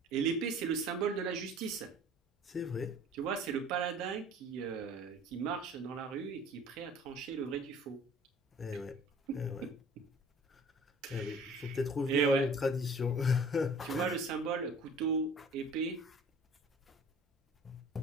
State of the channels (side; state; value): both; normal; correlation 0.48